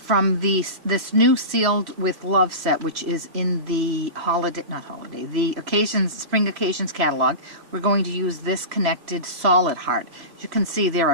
this new Sealed with Love set, which is in the the Spring Occasions catalog, we're going to use this connected solid heart. As you can see, there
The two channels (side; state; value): left; late; 3.0 ms